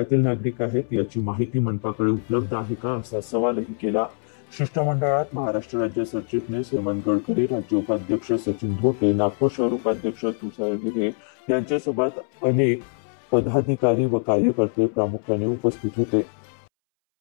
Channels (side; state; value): right; silent; 63 dB below the other